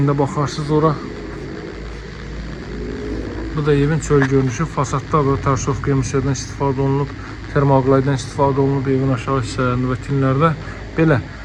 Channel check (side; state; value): both; identical; correlation 1.00